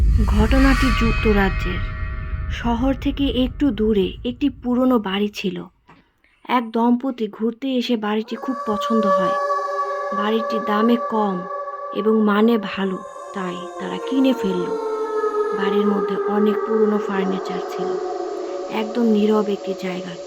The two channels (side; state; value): both; identical; correlation 1.00